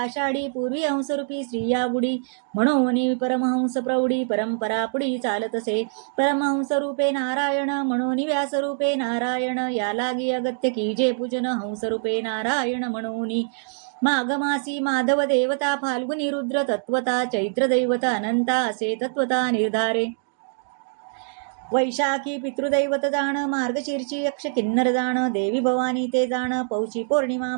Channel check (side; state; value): left; silent; digital silence